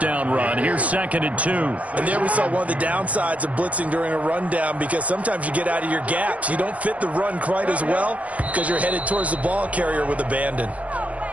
run. Here's 2nd and 2. And there we saw one of the downsides of blitzing during a rundown, because sometimes you get out of your gaps. You don't fit the run quite as well because you're headed towards the ball carrier with abandon.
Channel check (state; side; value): late; left; 0.067 ms